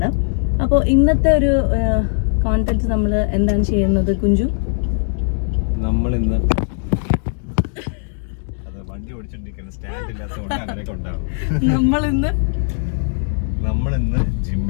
അപ്പോൾ ഇന്നത്തെ ഒരു കോണ്ടന്റ് നമ്മൾ എന്താണ് ചെയ്യുന്നത് കുഞ്ചു? നമ്മൾ ഇന്ന് വണ്ടി ഓടിച്ചോണ്ടിരിക്കുന്ന സ്റ്റാൻഡ് ഇല്ലാത്തതുകൊണ്ട് അങ്ങനെയൊക്കെ ഉണ്ടാവും. നമ്മളിന്ന്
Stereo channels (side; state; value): right; silent; digital silence